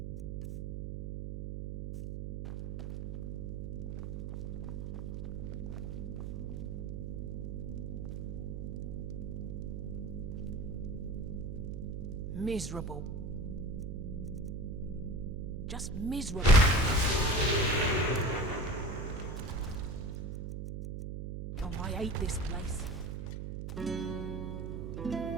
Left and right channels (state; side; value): noise; right; hum, 4 dB below the sound